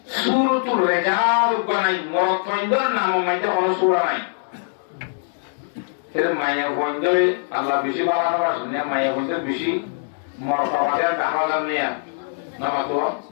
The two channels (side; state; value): right; silent; digital silence